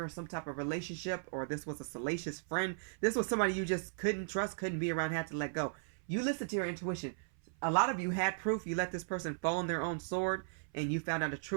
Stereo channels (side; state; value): left; silent; 53 dB below the other